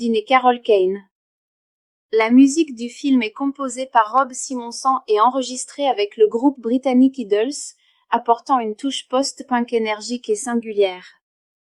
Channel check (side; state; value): both; identical; correlation 1.00